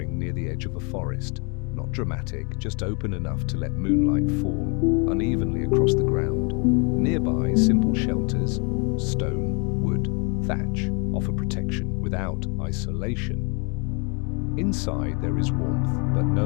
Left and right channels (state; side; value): quieter; right; 34.3 dB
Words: near the edge of a forest. Not dramatic, just open enough to let moonlight fall unevenly across the ground. Nearby, simple shelters, stone, wood, thatch, offer protection without isolation. Inside there is warmth, but